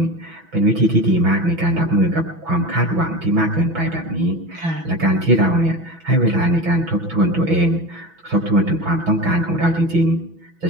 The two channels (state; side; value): late; left; 6.0 ms